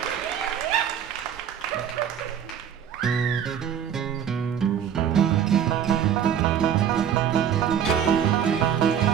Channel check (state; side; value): quieter; left; 8.8 dB